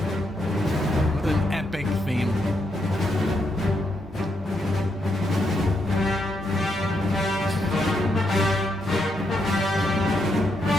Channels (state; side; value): normal; both; correlation 0.79